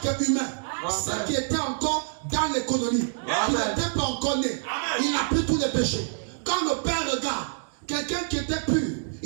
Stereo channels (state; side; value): silent; left; digital silence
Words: humain, ceux qui étaient encore dans l'économie, qui n'étaient pas encore nés. Il a pris tous les péchés. Quand le Père regarde, quelqu'un qui était pur,